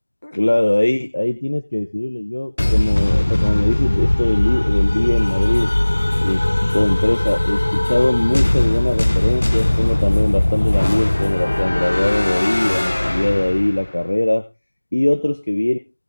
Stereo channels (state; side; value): inverted; both; correlation -1.00